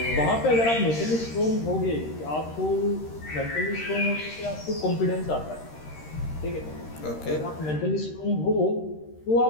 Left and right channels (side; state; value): right; late; 13 ms